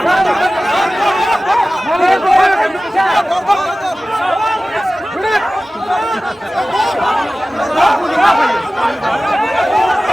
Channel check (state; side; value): normal; both; correlation 0.96